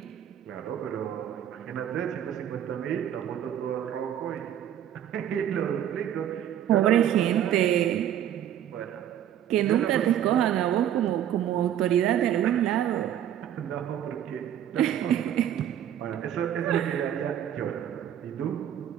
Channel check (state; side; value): quieter; left; 10.6 dB